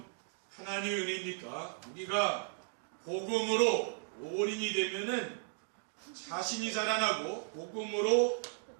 하나님의 은혜입니까? 우리가 복음으로 올인이 되면은 자신이 살아나고 복음으로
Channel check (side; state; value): left; silent; 54 dB below the other